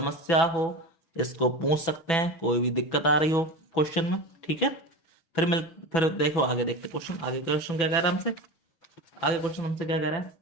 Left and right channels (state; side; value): late; right; 6.1 ms